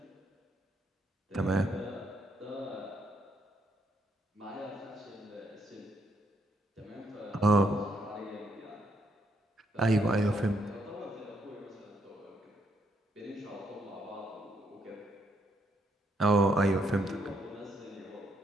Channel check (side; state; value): both; normal; correlation 0.74